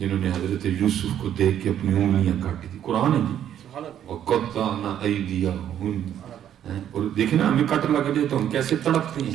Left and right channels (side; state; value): left; quieter; 10.3 dB